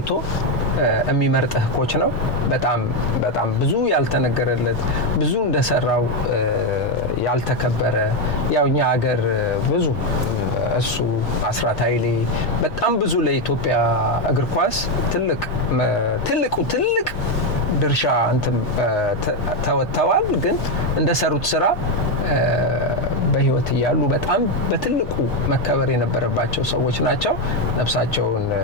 የሚመርጥህ ኮች ነው። በጣም ብዙ ያልተነገረለት ብዙ እንደሰራው ያልተከበረ ያው እኛ ሀገር ብዙ እሱ አስራት ኃይሌ በጣም ብዙ ለኢትዮጵያ እግር ኳስ ትልቅ ድርሻ ተወጥተዋል። ግን እንደሰሩት ስራ በህይወት እያሉ በጣም በትልቁ መከበር የነበረባቸው ሰዎች ናቸው። ነፍሳቸውን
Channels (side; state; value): both; normal; correlation 0.06